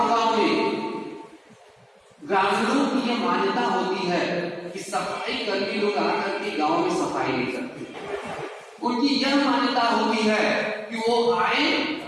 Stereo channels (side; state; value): both; identical; correlation 1.00